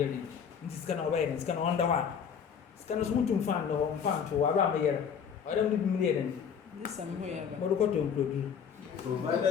This can obey and it's going on the one. It's kind of smooth to find or found to around a year. I don't do million. This somewhere. But look at you.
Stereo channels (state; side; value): quieter; right; 7.3 dB